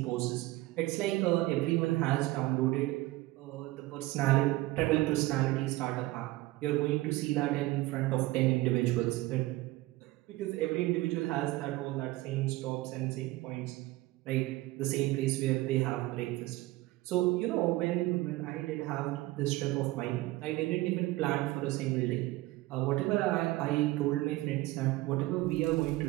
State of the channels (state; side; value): quieter; left; 18.7 dB